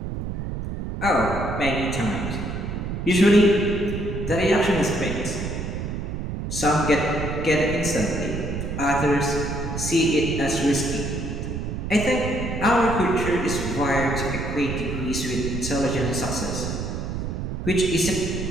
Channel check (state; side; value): noise; right; rumble, 5 dB below the sound